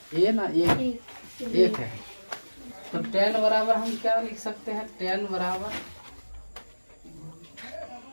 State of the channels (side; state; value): both; inverted; correlation -1.00